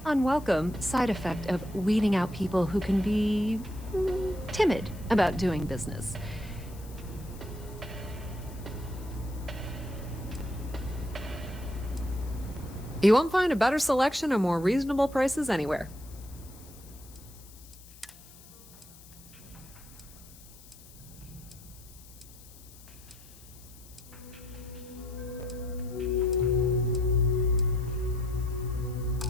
unwelcome, side effect of weeding out people who can be timid about doing business. You won't find a better selection or more reasonable prices anywhere.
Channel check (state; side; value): noise; left; hiss, 21 dB below the sound